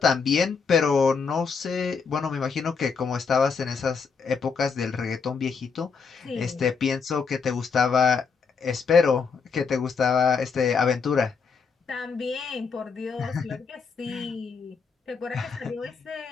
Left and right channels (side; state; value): right; quieter; 5.5 dB